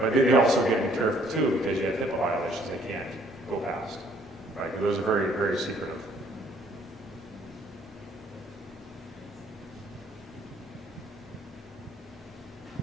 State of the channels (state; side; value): normal; both; correlation 0.62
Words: But they also get to be careful too, because you have HIPAA violations they can't go past, right? Because those are very, very secretive.